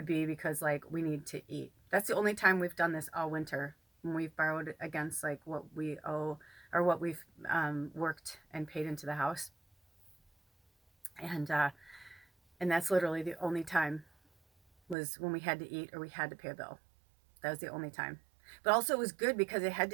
be because like we need to eat. That's the only time we've done this all winter, when we've borrowed against like what we owe or what we've worked and paid into the house. And that's literally the only time, was when we had to eat or we had to pay a bill. That was the only time. But also it was good because it had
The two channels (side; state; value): left; drops out; at 15.0 s